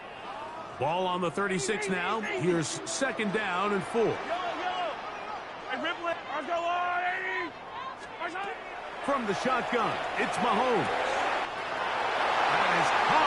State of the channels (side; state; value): both; identical; correlation 1.00